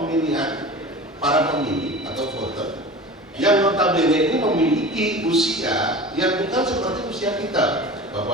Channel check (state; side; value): normal; both; correlation 0.35